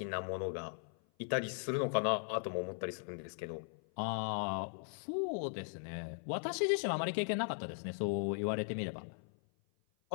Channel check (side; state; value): right; silent; 52 dB below the other